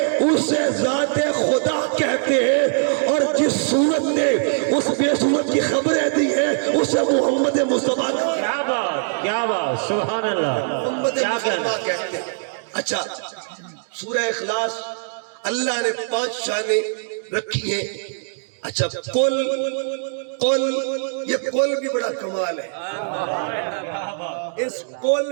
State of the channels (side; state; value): left; silent; digital silence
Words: اسے ذات خدا کہتے ہیں، اور جس صورت نے اس بے صورت کی خبریں دی ہیں اسے محمد مصطفیٰ کیا بات، کیا بات، سبحان اللہ. محمد کیا کہنا مصطفیٰ ہے؟ کہتے ہیں. اچھا سورہ اخلاص اللہ نے 5 شانیں رکھی ہیں. اچھا قل یہ قل بھی بڑا کمال ہے. اس